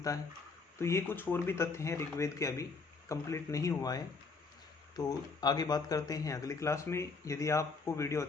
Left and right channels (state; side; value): quieter; right; 4.5 dB